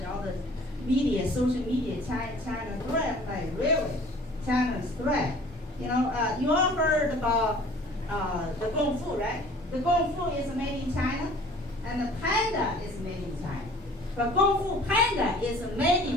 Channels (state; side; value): normal; both; correlation 0.49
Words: all the media, social media, China threat, like really, China's threat. You all heard about the Kung Fu, right? The Kung Fu is made in China, and the panda is made in China. But Kung Fu Panda is made